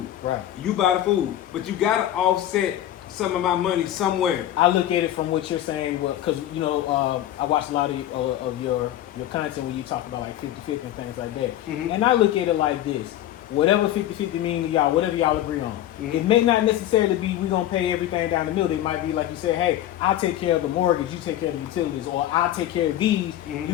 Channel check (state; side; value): quieter; right; 12.8 dB